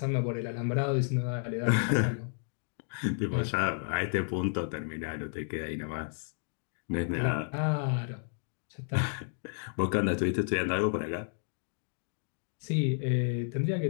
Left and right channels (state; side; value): silent; right; digital silence